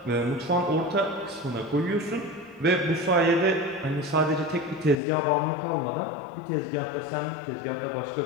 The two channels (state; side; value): drops out; right; at 5.0 s